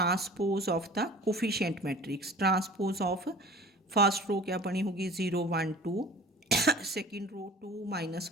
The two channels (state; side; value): normal; both; correlation 0.43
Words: of the coefficient matrix, transpose of first row क्या बनी होगी 0 1 2, सेकेंड रो 2